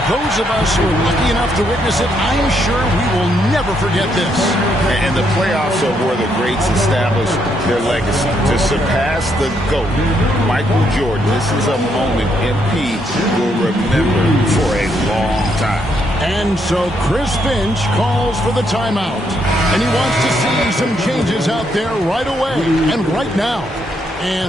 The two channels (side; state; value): both; normal; correlation 0.75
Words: those of us who are lucky enough to witness it, I'm sure we will never forget this. And the playoffs are where the greats establish their legacy. To surpass the GOAT, Michael Jordan, this is a moment MP will remember for a long time. And so Chris Finch calls for the timeout. And he wants to see some changes out there right away and right now.